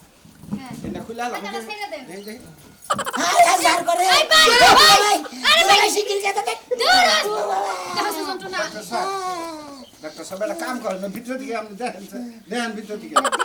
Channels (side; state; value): both; identical; correlation 1.00